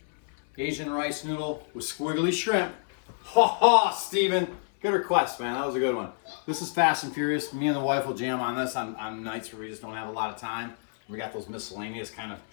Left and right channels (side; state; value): right; silent; 59 dB below the other